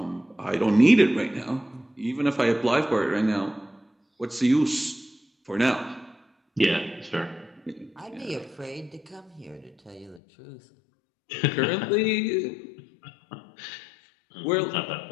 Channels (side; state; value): right; drops out; at 10.2 s